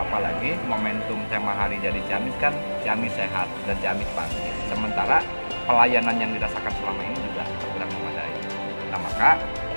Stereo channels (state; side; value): inverted; both; correlation -1.00